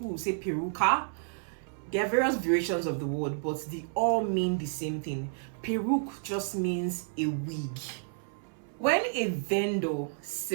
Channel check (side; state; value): left; silent; 57 dB below the other